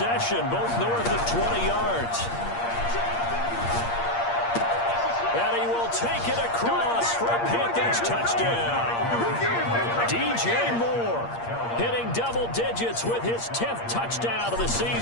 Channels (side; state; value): right; late; 8.6 ms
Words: both north of 20 yards. And he will take it across for a Panthers touchdown. DJ Moore hitting double digits with his 10th touchdown of the